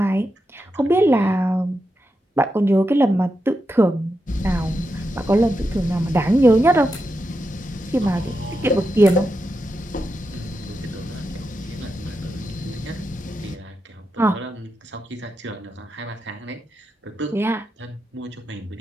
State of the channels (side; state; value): both; normal; correlation 0.87